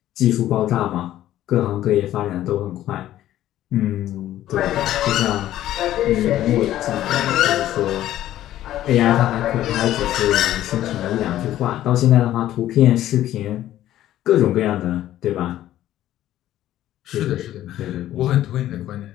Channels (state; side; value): quieter; right; 13.2 dB